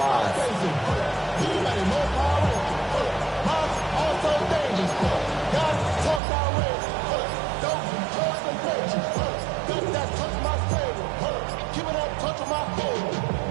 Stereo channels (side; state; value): left; drops out; at 6.2 s